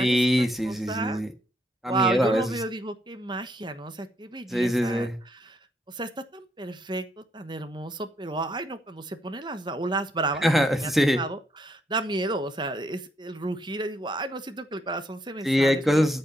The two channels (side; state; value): both; normal; correlation 0.75